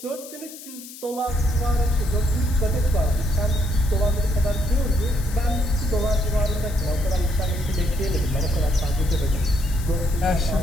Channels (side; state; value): left; noise; hiss, 15 dB below the sound